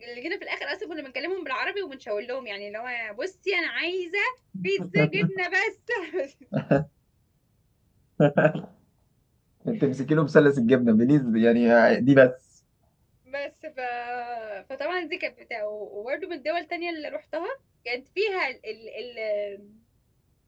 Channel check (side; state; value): both; identical; correlation 1.00